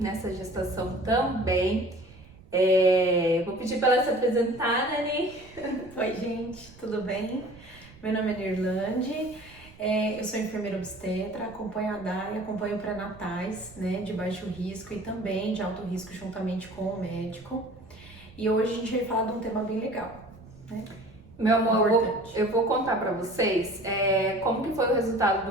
nessa gestação também. Vou pedir pra ela se apresentar, né, Ani? Oi, gente, tudo bem? Meu nome é Nirlande, eu sou enfermeira obstetra, acompanho a Dai, acompanho pré-natais, né, de baixo risco e também de alto risco juntamente com o médico. E hoje a gente vai falar de um tema bem legal, né? Meu amor, Importante. eu vou contar pra vocês como que foi o resultado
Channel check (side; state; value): right; noise; rumble, 22 dB below the sound